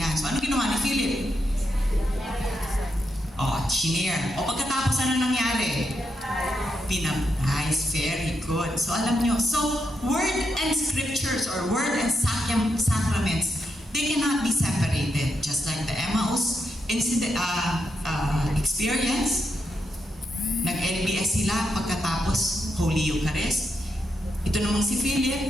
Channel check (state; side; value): normal; both; correlation 0.83